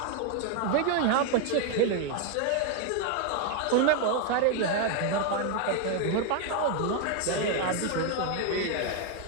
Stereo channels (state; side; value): different; both; correlation 0.01